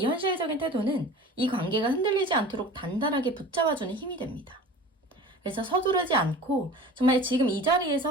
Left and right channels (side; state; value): both; normal; correlation 0.40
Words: 현실적인 태도는 이 관계가 흔들리지 않도록 단단하게 붙잡아주는 힘이 됩니다. 그래서 서두르지 않고 정말 지금 이